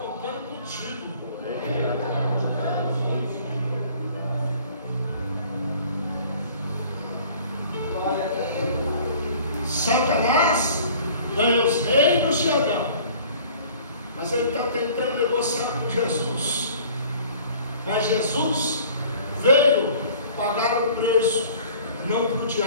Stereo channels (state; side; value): inverted; both; correlation -0.50